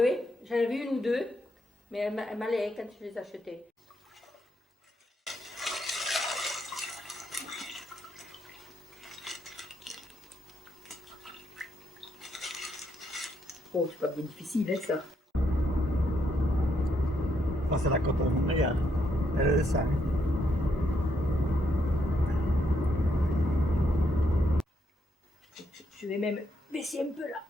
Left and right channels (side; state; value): both; normal; correlation 0.77